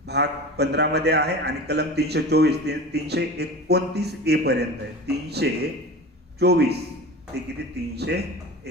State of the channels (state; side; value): normal; both; correlation 0.33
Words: भाग 15 मध्ये आहे आणि कलम 324 ते 329 ए पर्यंत आहे. 324 ते किती,